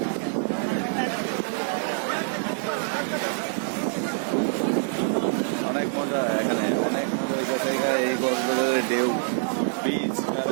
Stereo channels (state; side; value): silent; left; 61 dB below the other